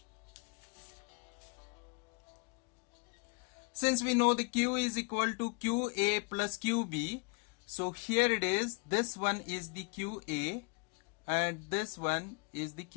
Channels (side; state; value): right; quieter; 33.3 dB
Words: Since we know the Q is equal to QA plus QB, so here it is, this one is the QA and this one is the